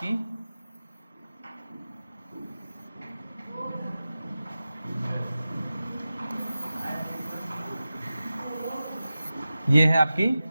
ये है आपकी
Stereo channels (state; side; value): inverted; both; correlation -0.95